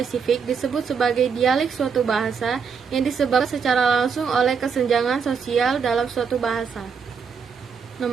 disebut sebagai dialek suatu bahasa yang disebabkan secara langsung oleh kesenjangan sosial dalam suatu bahasa.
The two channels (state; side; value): quieter; left; 6.1 dB